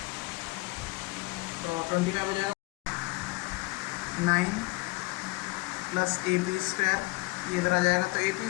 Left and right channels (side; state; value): right; quieter; 24.0 dB